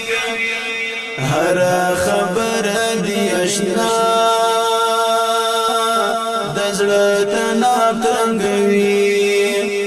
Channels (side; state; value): both; identical; correlation 1.00